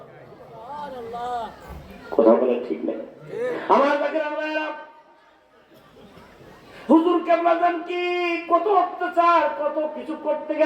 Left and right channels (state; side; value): identical; both; correlation 1.00